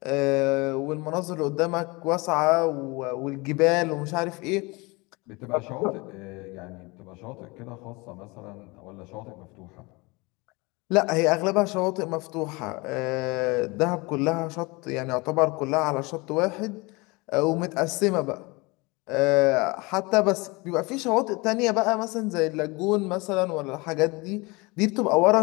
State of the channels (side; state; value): right; quieter; 25.5 dB